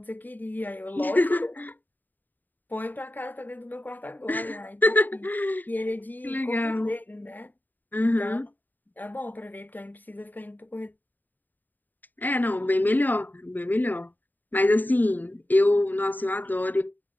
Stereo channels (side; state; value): right; late; 0.088 ms